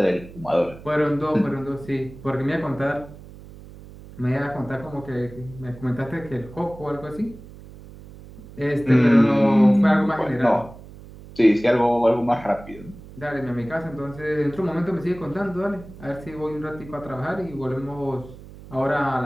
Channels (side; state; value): right; noise; hum, 17 dB below the sound